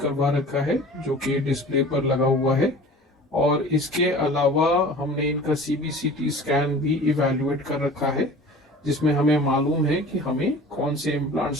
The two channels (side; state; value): both; normal; correlation 0.42